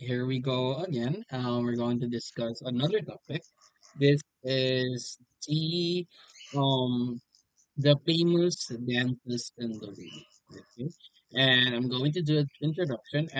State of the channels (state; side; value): identical; both; correlation 1.00